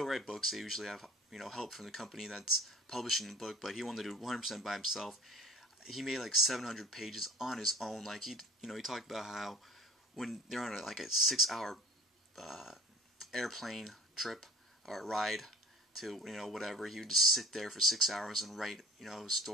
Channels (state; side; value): normal; both; correlation 0.46